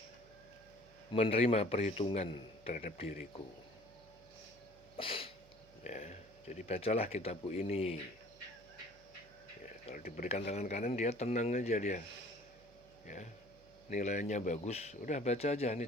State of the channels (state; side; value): noise; right; hum, 26 dB below the sound